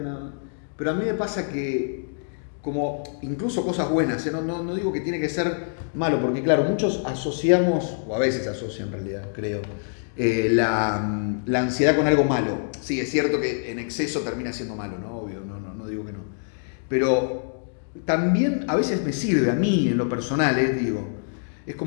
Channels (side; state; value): right; silent; digital silence